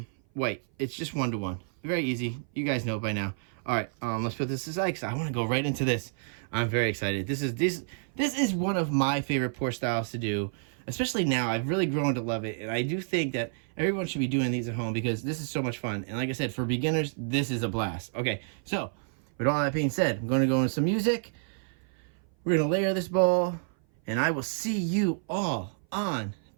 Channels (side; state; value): left; silent; 57 dB below the other